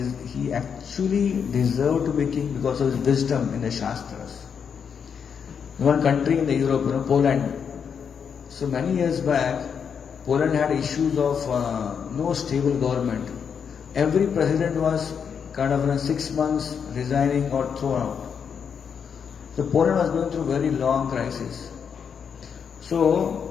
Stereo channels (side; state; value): right; quieter; 7.0 dB